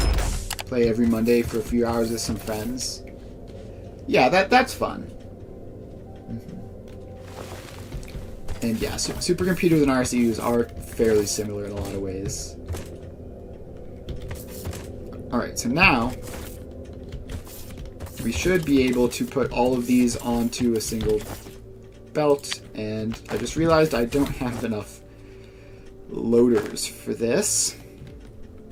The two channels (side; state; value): both; identical; correlation 1.00